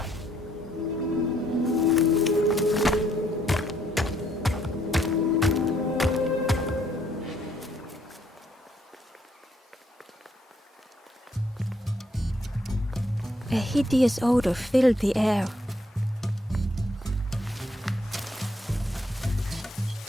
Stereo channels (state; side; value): normal; both; correlation 0.70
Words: A hideous odor filled the air.